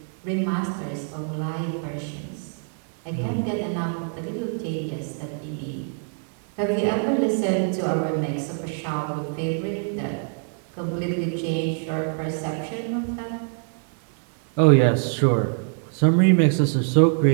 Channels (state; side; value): silent; left; 58 dB below the other